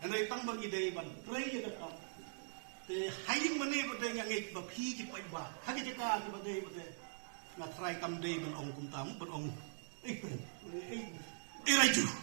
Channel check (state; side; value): silent; left; digital silence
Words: andai tang bagi dei ban trei ya kata te haing mane bade yang ngek ba phi ki pai ba hagi jeka ki bade na try kam dei ban ong kum tam ban ong raju